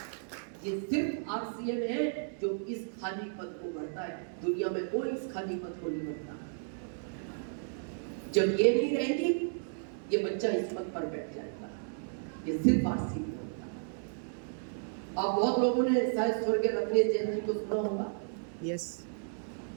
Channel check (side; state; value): left; silent; digital silence